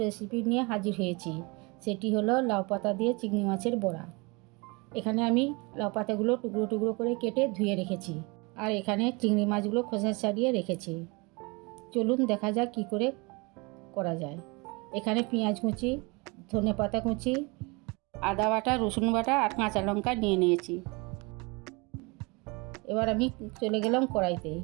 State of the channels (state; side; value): quieter; left; 27.6 dB